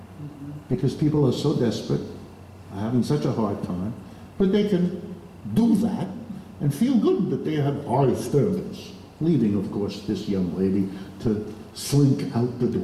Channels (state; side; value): identical; both; correlation 1.00